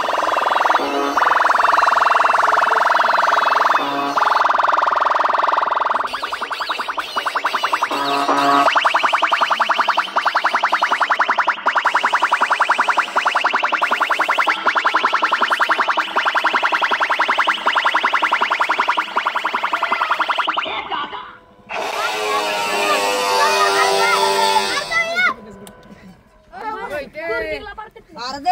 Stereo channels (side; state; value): both; identical; correlation 1.00